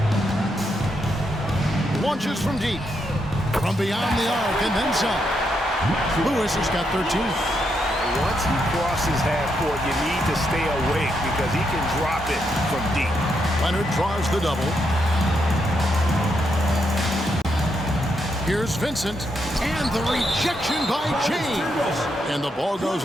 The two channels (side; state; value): both; normal; correlation 0.80